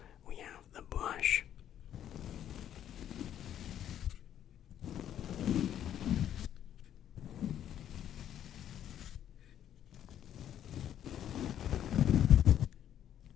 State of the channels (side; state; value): right; quieter; 10.5 dB